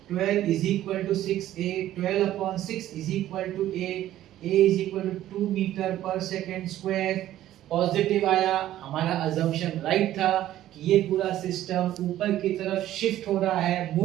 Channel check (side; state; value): left; quieter; 13.3 dB